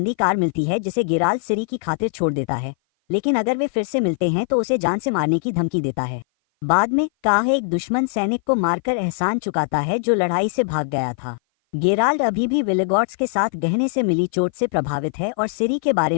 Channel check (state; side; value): silent; right; 56 dB below the other